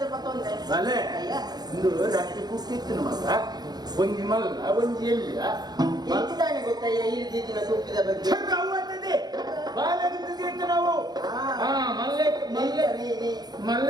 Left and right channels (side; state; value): left; late; 0.20 ms